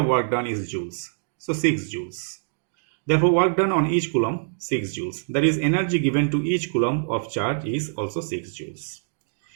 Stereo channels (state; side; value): silent; left; digital silence